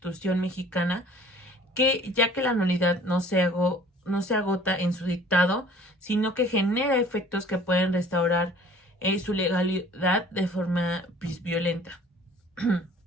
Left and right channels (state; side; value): normal; both; correlation 0.51